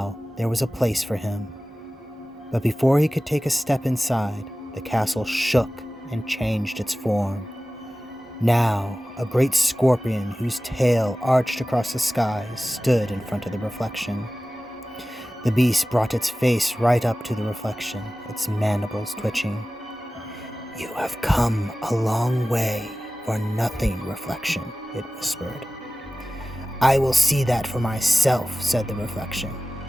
there was a place for him. But before he could take a step inside, the castle shook and changed its form. Now, a great scorpion whose tail arched across the sky stood in front of the reflection. The beast brought its face right up to the reflection, its mandibles twitching. "You have come a long way for nothing, reflection," it whispered. "I will see that for myself," said the reflection.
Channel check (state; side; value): normal; both; correlation 0.96